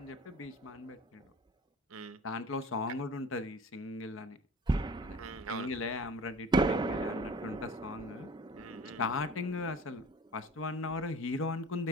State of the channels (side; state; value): both; normal; correlation 0.43